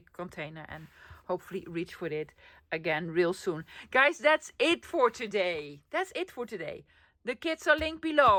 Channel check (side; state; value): both; identical; correlation 1.00